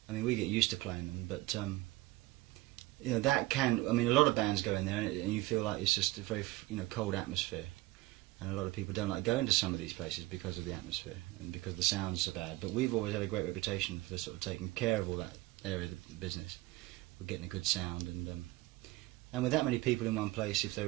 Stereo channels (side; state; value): left; quieter; 19.4 dB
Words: I mean, we get used to playing them, but you know, that can. I mean, a lot of bands go in there, and you feel like it's just a very, you know, cold atmosphere, and a lot of people don't like going to some of these places because of the atmosphere and because the sounds are bad. But we've always had a great reputation for sort of taking care of all that area of the business. We're getting a good sound, and with that many people in one place, if